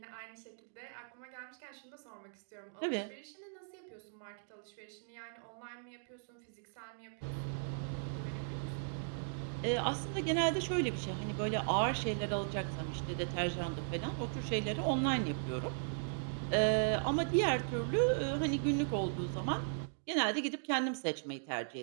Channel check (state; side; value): silent; left; digital silence